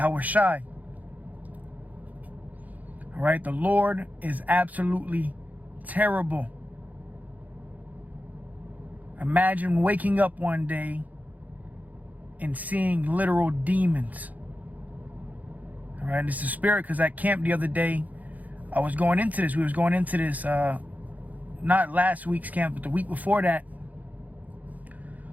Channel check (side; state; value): left; late; 0.078 ms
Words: Shai. All right, the Lord is absolutely terrible. Imagine waking up one day and seeing literal demons. All right, this is spirit, because at camp the other day, I was going into this. We was going into this, not last week's camp, but the week before that.